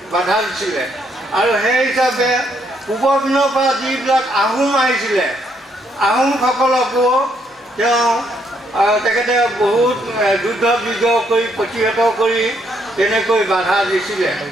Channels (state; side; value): normal; both; correlation 0.73